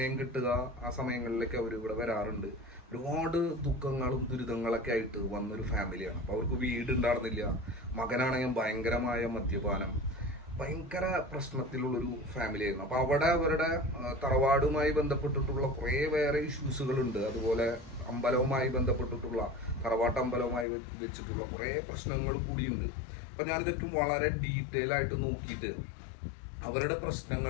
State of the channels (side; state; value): right; drops out; at 20.7 s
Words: കിട്ടുക ആ സമയങ്ങളിലേക്ക് അവർ ഇവിടെ വരാറുണ്ട്. ഒരുപാട് ദുഃഖങ്ങളും ദുരിതങ്ങളൊക്കെ ആയിട്ട് വന്നൊരു ഫാമിലിയാണ്. അപ്പോൾ അവർക്ക് വീട് ഉണ്ടായിരുന്നില്ല. മകനാണെങ്കിൽ ഭയങ്കരമായ മദ്യപാനം, ഭയങ്കര പ്രശ്നത്തിലുള്ളൊരു ഫാമിലി ആയിരുന്നു. അപ്പോൾ അവിടെ അവരുടെ തറവാടുമായി ബന്ധപ്പെട്ടിട്ടുള്ള കുറേ വേറെ ഇഷ്യൂസുകളുണ്ട്. അതുപോലെ അമ്പലവുമായി ബന്ധപ്പെട്ടിട്ടുള്ള തറവാട്ട് അമ്പലവുമായി വെച്ചിട്ടുള്ള കുറേ പ്രശ്നങ്ങൾ കൂടിയുണ്ട്. അപ്പം ഞാനിതൊക്കെ വളരെ ഡീറ്റെയിൽ ആയിട്ട് നോക്കിയിട്ട് അവരുടെ